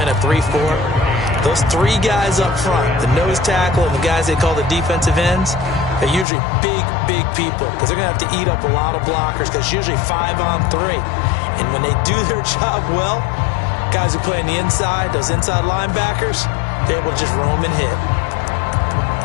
a 3-4, those 3 guys up front, the nose tackle and the guys they call the defensive ends, they're usually big people because they're going to have to eat up a lot of blockers because it's usually 5-on-3. And when they do their job well, guys who play on the inside, those inside linebackers, they're able to just roam and hit.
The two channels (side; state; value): right; drops out; at 6.2 s